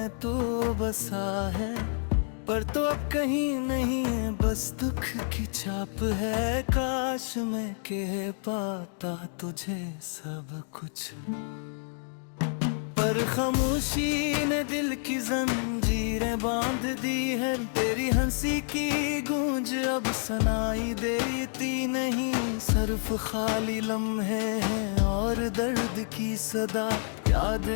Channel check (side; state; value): right; silent; 59 dB below the other